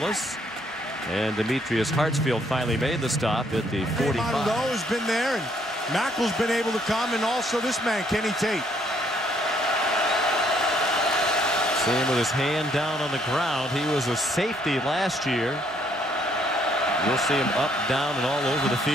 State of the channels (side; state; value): both; normal; correlation 0.68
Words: And Demetrius Hartsfield finally made the stop at the 45. Monroe has been there, and Mackel's been able to come, and also this man, Kenny Tate. See him with his hand down on the ground. He was a safety last year. You'll see him up, down, and all over the